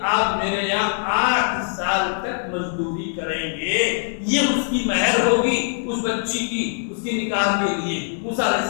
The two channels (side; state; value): right; silent; digital silence